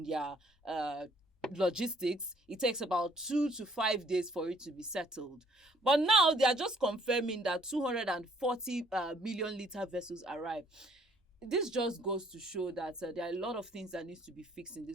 their logistics, it takes about 2 to 5 days for it to be settled. But now they are just confirming that 240 million litre vessels arrive. This just goes to show that there are a lot of things that needs to be fixed in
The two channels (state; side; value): normal; both; correlation 0.63